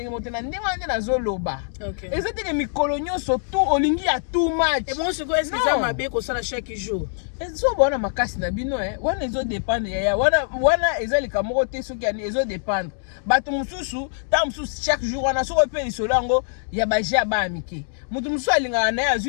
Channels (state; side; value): silent; right; digital silence